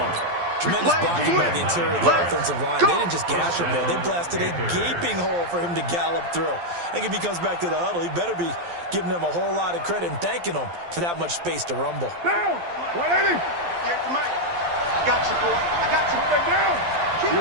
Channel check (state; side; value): late; left; 12 ms